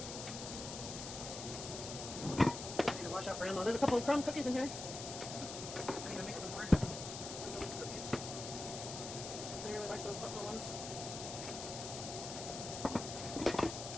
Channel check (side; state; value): left; noise; hiss, 7 dB below the sound